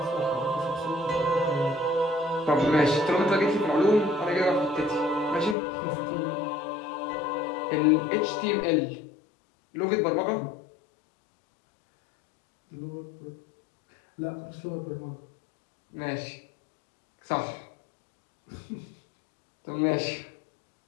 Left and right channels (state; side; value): drops out; right; at 5.6 s